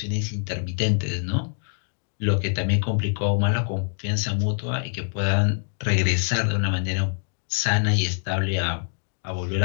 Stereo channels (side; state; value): right; silent; digital silence